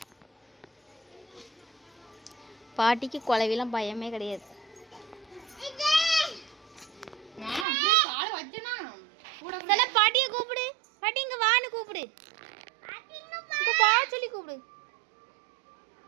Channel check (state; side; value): drops out; left; at 7.7 s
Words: பாட்டிக்கு குழவிலாம் பயமே கிடையாது. பாட்டியை கூப்பிடு. பாட்டி இங்க வான்னு கூப்பிடு. இங்க பா சொல்லி கூப்பிடு.